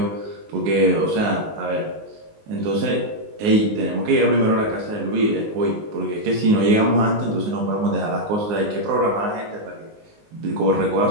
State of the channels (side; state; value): left; late; 19 ms